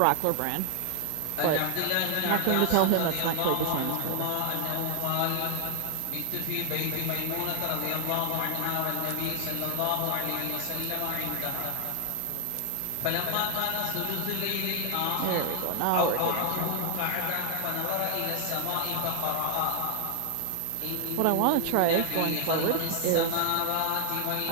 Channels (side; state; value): both; different; correlation 0.00